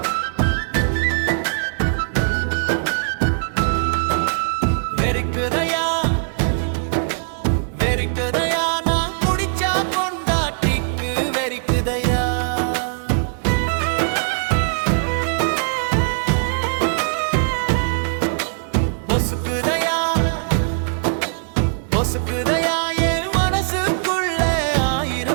வெறிக்குதையா நான் குடிச்சா பொண்டாட்டிக்கு வெறிக்குதையா பொசுக்குதையா பொசுக்குதையா என் மனசுக்குள்ள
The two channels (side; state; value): left; silent; 65 dB below the other